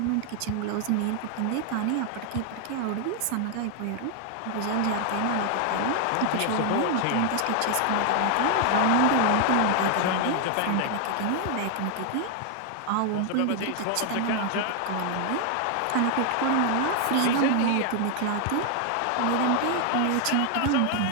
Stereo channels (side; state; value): both; different; correlation 0.00